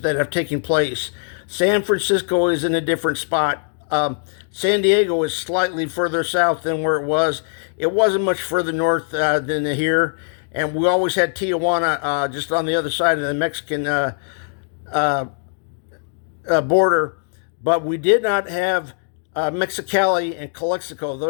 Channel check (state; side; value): silent; right; digital silence